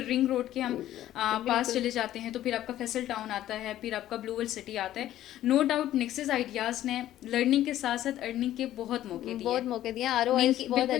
रिंग रोड के हम पास बिल्कुल चले जाते हैं तो फिर आपका फैसल टाउन आता है, फिर आपका ब्लू वर्ल्ड सिटी आता है। नो डाउट नेक्सस आइडियाज़ ने लर्निंग के साथ साथ अर्निंग के बहुत मौके दिए बहुत हैं। मौके दिए, मेन आरओआईस की बहुत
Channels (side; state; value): right; quieter; 13.1 dB